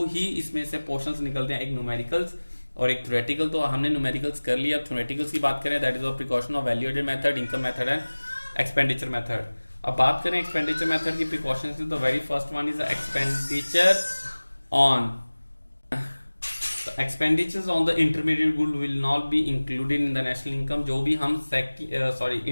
ही इसमें से पोर्शंस निकलते हैं, एक न्यूमेरिकल्स और एक थ्योरेटिकल, तो हमने न्यूमेरिकल्स कर लिया। अब थ्योरेटिकल्स की बात करें, that is of precaution of value added method, income method and expenditure method. अब बात करें एक्सपेंडिचर मेथड की प्रिकॉशंस की, तो very first one is expenditure on expenditures on the intermediate good will not be included in the national income। जो भी हम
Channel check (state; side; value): inverted; both; correlation -1.00